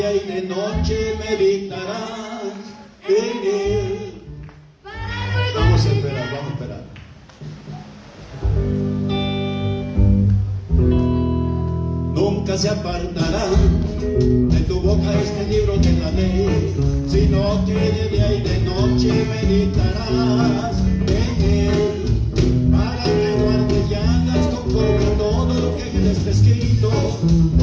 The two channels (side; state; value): both; identical; correlation 1.00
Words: y de noche meditarás en él. Vamos a esperar. Nunca se apartará de tu boca este libro de la ley, sino que de día y de noche meditarás en él, para que guardes y hagas conforme a todo lo que en él está escrito,